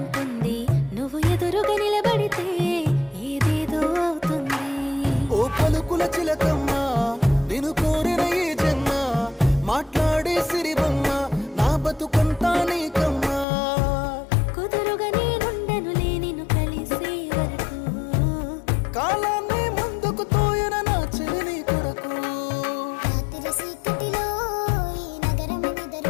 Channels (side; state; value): right; drops out; at 13.5 s